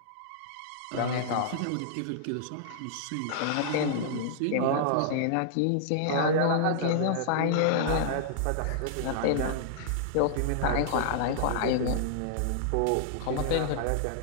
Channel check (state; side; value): different; both; correlation -0.01